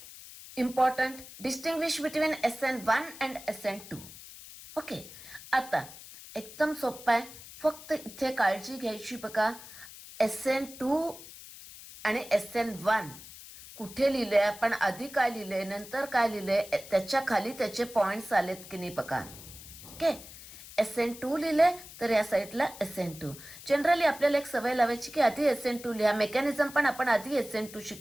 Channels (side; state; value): left; noise; hiss, 16 dB below the sound